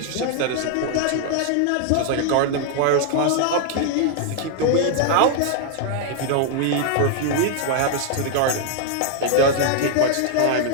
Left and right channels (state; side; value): different; both; correlation 0.00